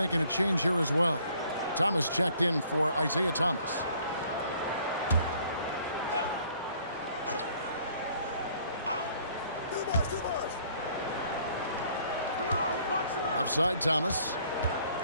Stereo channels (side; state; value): both; inverted; correlation -0.60